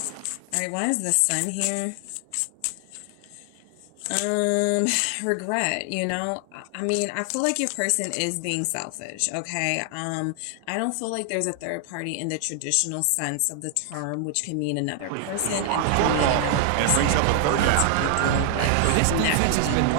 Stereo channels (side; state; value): both; different; correlation 0.00